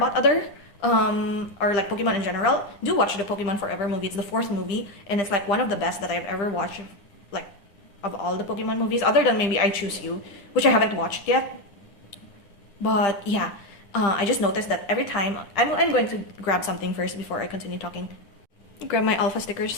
other or like Pokemon in general, do watch the Pokemon Forever movie. It's the 4th movie, and it's like one of the best that I've ever watched, like of all the Pokemon movies, other than maybe I Choose You, which I haven't watched yet. But yeah, I just noticed that every time, I'm going to grab something first before I continue talking. Grab my alpha stickers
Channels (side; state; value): right; late; 9.9 ms